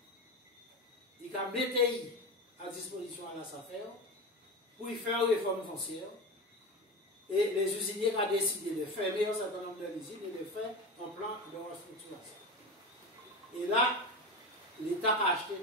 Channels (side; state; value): both; normal; correlation 0.24